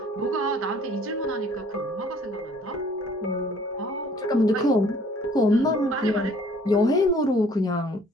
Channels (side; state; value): both; normal; correlation 0.56